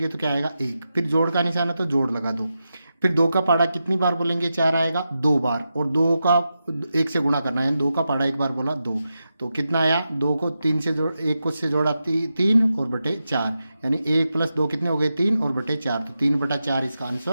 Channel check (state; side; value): inverted; both; correlation -0.89